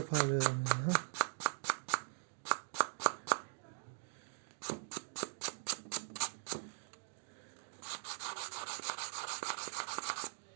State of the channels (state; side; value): silent; left; digital silence